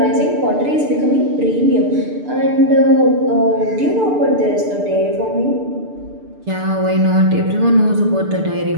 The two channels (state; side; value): late; left; 6.8 ms